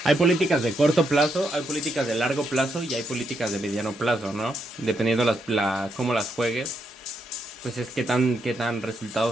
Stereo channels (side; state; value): both; normal; correlation 0.79